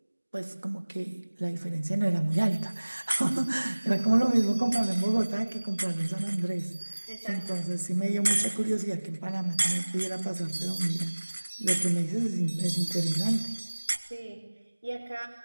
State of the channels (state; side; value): inverted; both; correlation -1.00